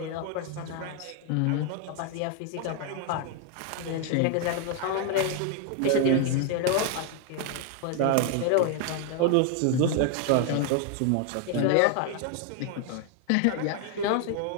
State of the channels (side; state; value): both; different; correlation 0.00